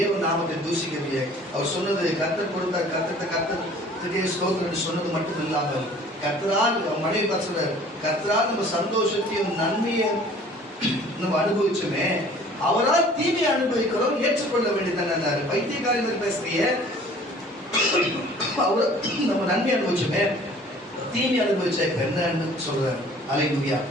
நாமத்தை தூசிக்கவில்லை. அவர் சொன்னது கர்த்தர் கொடுத்தார், கர்த்தருக்கே ஸ்தோத்திரம் சொன்னது மட்டும் இல்லாமல், கர்த்தரால் மனைவி சொல்றார், கர்த்தரால் நம்ம சந்தோஷத்தையும் நன்மையும் நம்ம அனுபவிச்சோமே, அவரால் தீமையை அனுபவிக்கிறோம், ஏற்றுக்கொள்ள வேண்டியதான பைத்தியக்காரர்கள் பேசுறிய, அவர் நம்ம நன்மை அனுபவிச்சோமே, தீமை அனுபவிச்ச என்னன்னு சொல்றாரு. அல்லேலூயா.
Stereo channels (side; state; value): both; normal; correlation 0.51